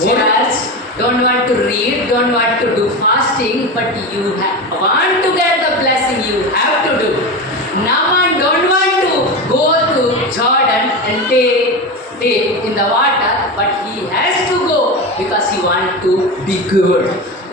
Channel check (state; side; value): normal; both; correlation 0.22